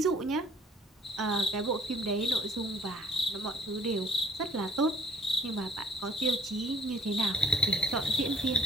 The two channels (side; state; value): both; normal; correlation 0.57